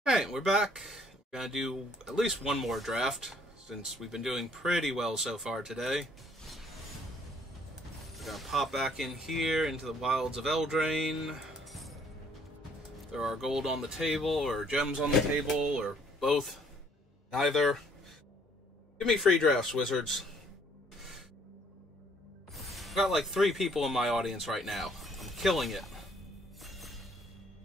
Alright, we're back. We're gonna do at least one more draft, since we've been doing pretty well so far today. We're gonna pop back in here into the wilds of Eldraine. There are gold on the table, or gems on the table, or both. Neither. Give me free drafts, wizards. I've got like 3 people in my audience right now. I'm killing it.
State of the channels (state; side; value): normal; both; correlation 0.63